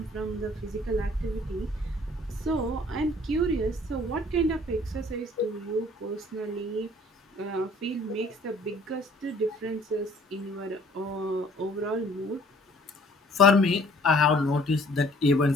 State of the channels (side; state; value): both; normal; correlation 0.56